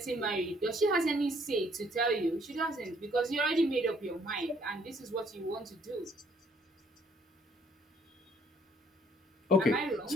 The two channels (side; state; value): both; normal; correlation 0.64